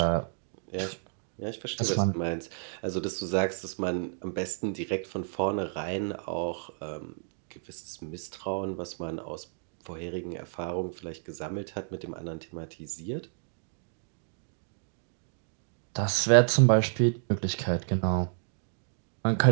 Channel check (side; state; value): left; silent; digital silence